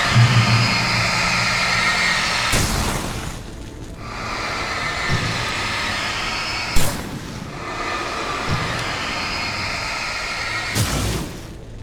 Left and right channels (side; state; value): both; identical; correlation 1.00